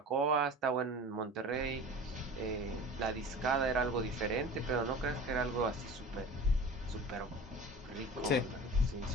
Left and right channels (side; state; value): both; normal; correlation 0.38